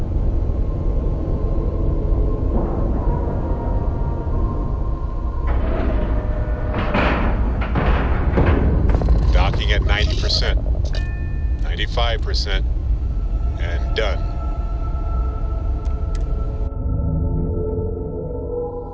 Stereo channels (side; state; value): both; identical; correlation 1.00